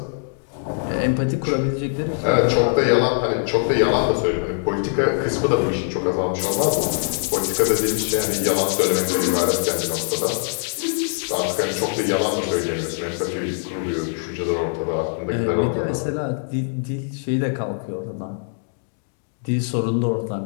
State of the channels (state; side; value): silent; right; digital silence